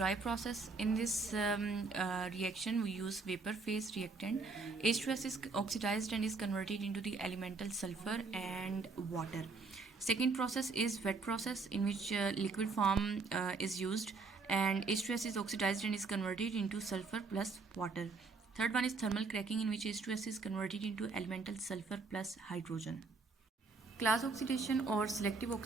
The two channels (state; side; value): quieter; left; 4.1 dB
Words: process. In this reaction we use vapor phase reactant. H2S is oxidized and is converted into the elemental sulfur and water. Second process is wet process, in which liquid form is used and H2S is oxidized and is converted into sulfur plus water. Third one is thermal cracking, in which H2S is converted into elemental sulfur plus hydrogen. Class oxidation और सिलेक्टिव